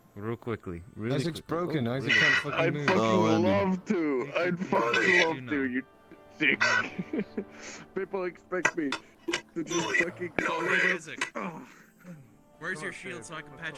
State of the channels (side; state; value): both; identical; correlation 1.00